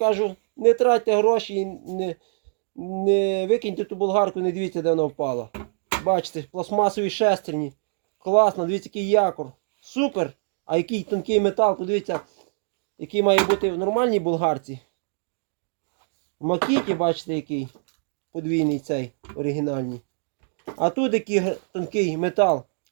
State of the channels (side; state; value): left; silent; digital silence